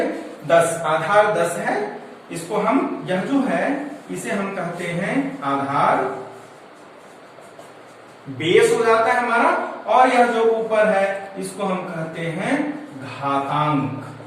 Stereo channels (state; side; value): identical; both; correlation 1.00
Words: 10। आधार 10 है, इसको हम यह जो है इसे हम कहते हैं आधार, बेस हो जाता है हमारा। और यह जो ऊपर है इसको हम कहते हैं घातांक।